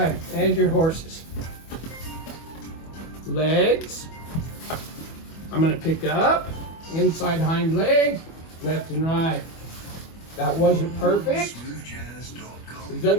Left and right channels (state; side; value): late; right; 25 ms